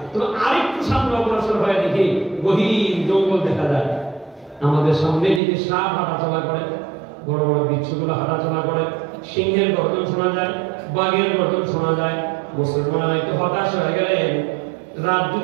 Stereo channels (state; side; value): drops out; left; at 5.4 s